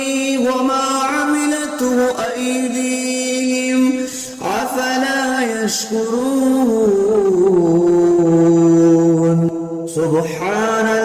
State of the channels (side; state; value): both; identical; correlation 1.00